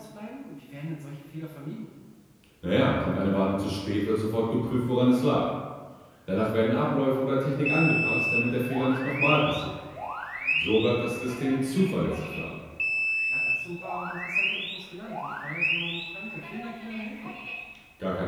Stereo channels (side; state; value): both; identical; correlation 1.00